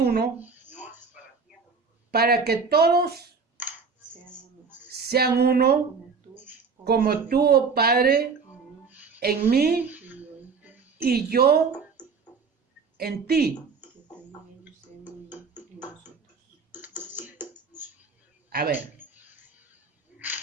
para que todos sean uno, como tú, oh Padre, en mí y yo en ti. A ver.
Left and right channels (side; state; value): left; quieter; 5.1 dB